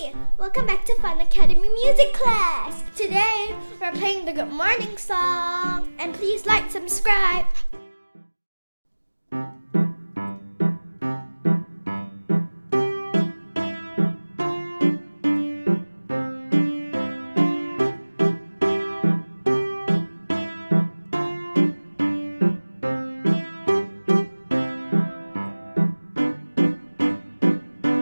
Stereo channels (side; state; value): both; inverted; correlation -1.00